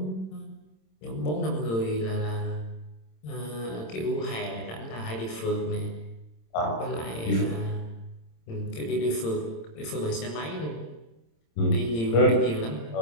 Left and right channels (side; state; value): right; late; 26 ms